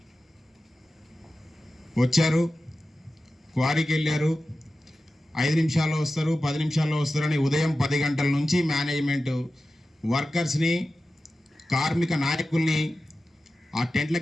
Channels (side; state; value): both; normal; correlation 0.94